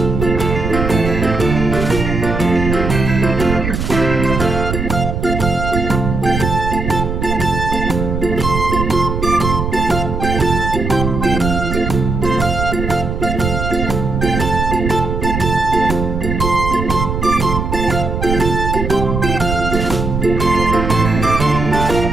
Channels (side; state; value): right; noise; rumble, 3 dB below the sound